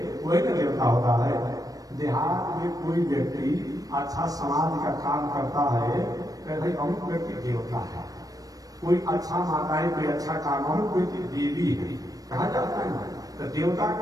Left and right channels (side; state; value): left; late; 0.18 ms